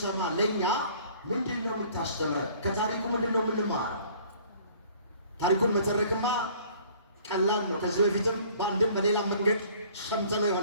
ለእኛ ምንድን ነው የምታስተምረን? ከታሪኩ ምንድን ነው የምንማረው? ታሪኩን መተረክማ ቀላል ነው። ከዚህ በፊትም በአንድም በሌላ መንገድ ሰምተነው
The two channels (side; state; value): both; inverted; correlation -0.53